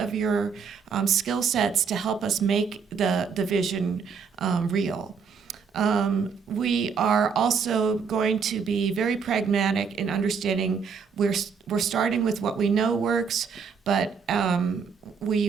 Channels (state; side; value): quieter; left; 6.0 dB